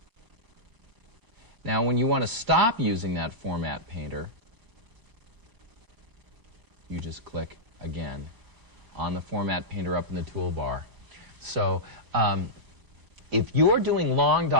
Now, when you want to stop using that Format Painter, you just click again on the Format Painter up in the toolbar. So if you're doing long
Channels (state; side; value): late; left; 4.9 ms